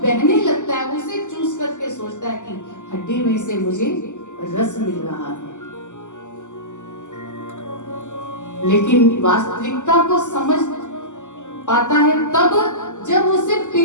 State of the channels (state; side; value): late; right; 0.85 ms